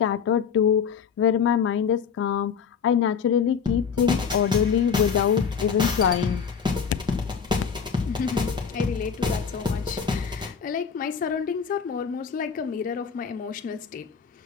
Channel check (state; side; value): quieter; right; 6.7 dB